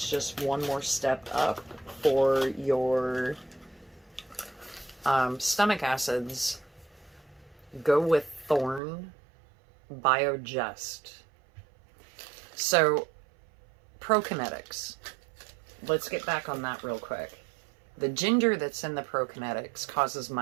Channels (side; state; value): left; drops out; at 8.8 s